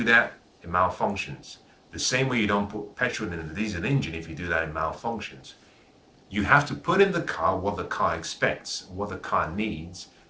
that, it malfunctions. The same way you don't put petrol in a diesel engine. If you do that, it malfunctions. You have to put in the car what the car expects, what the car needs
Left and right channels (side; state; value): both; identical; correlation 1.00